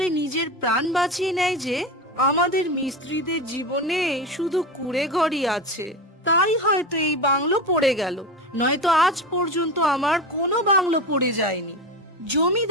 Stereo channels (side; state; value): both; normal; correlation 0.23